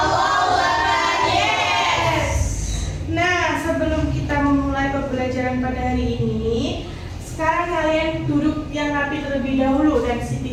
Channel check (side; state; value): both; identical; correlation 1.00